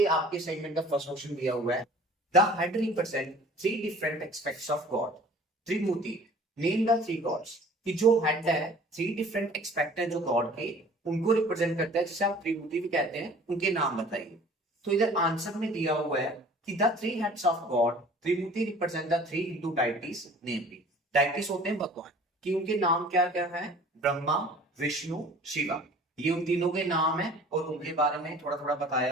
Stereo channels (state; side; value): normal; both; correlation 0.48